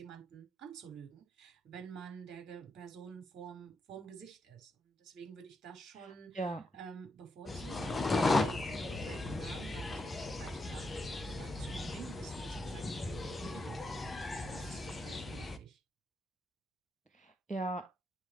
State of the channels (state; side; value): normal; both; correlation 0.83